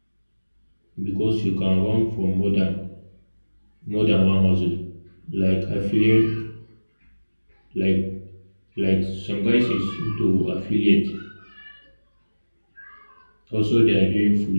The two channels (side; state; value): both; inverted; correlation -1.00